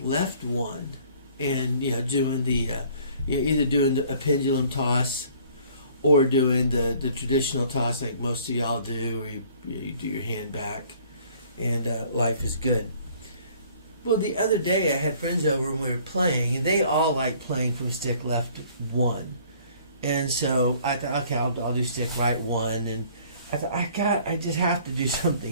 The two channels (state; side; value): inverted; both; correlation -0.55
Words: left one, and doing the either doing a pendulum toss or doing the traditional toss like most of y'all do, where you do your hand back, and life is good. Well, the other day I had friends over and we were playing, and they all like playing from stick left one. And so I thought, okay, I'll do stick right one, and I thought I just have to do